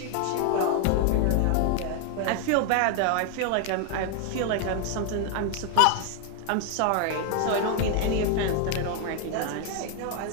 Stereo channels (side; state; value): both; different; correlation 0.00